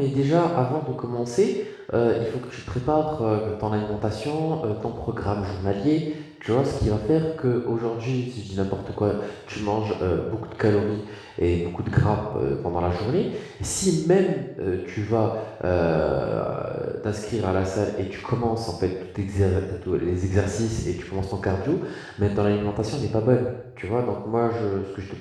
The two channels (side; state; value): both; identical; correlation 1.00